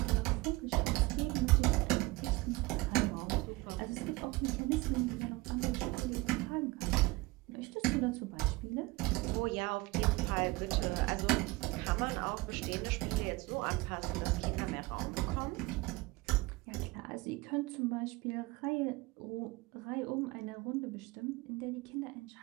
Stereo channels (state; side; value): quieter; left; 22.4 dB